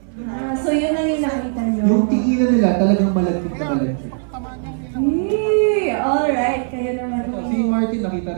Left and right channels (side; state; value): left; silent; 62 dB below the other